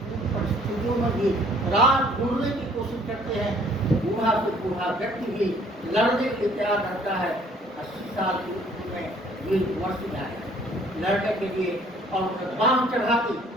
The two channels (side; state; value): both; normal; correlation 0.59